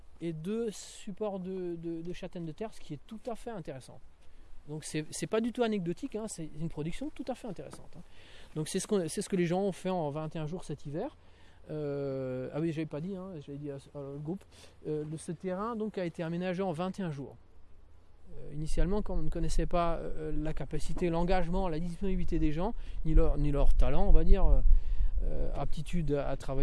et 2 supports de châtaignes de terre, ce qui est tout à fait intéressant. Donc c'est pas du tout anecdotique, hein, c'est une production tout à fait intéressante. Hein. Donc c'est ce que les gens ont fait en 21 jours cet hiver. Ah oui, j'avais pas dit, hein, j'avais dit au groupe. Ce terrain donc a été aménagé en 21 jours. Initialement, quand on ne connaissait pas la capacité, l'engagement, la disponibilité des gens, ni leur talent, on va dire, aptitude à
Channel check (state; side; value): identical; both; correlation 1.00